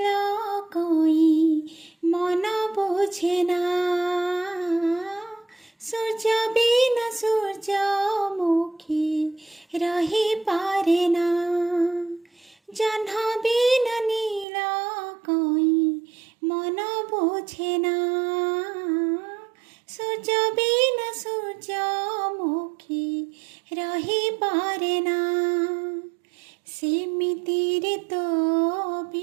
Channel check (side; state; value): left; drops out; at 14.5 s